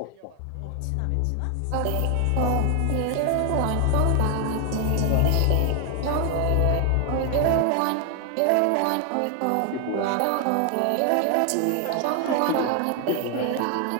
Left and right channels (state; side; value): different; both; correlation 0.00